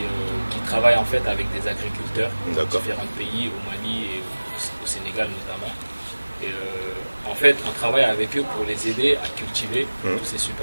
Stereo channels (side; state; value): both; inverted; correlation -1.00